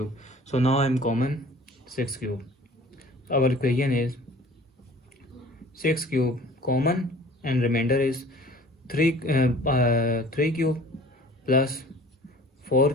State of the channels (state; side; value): normal; both; correlation 0.47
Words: So now I'm common 6 cube. Our equation is 6 cube common and remainder is 3 cube plus 4